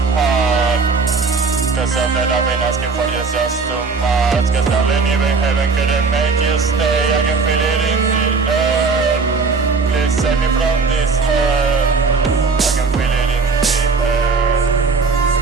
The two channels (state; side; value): quieter; left; 4.5 dB